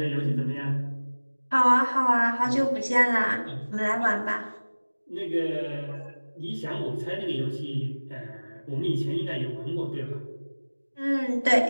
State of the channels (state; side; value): inverted; both; correlation -1.00